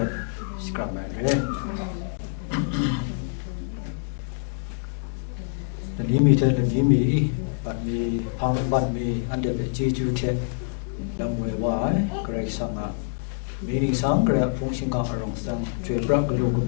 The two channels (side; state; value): right; silent; 61 dB below the other